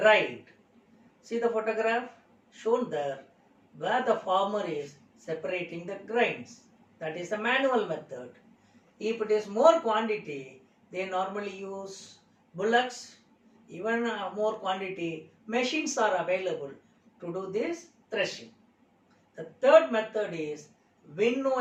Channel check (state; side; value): identical; both; correlation 1.00